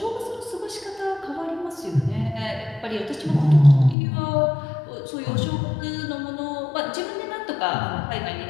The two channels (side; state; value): right; drops out; at 4.0 s